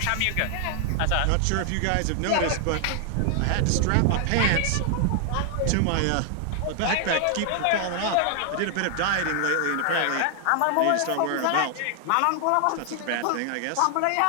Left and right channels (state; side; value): different; both; correlation 0.00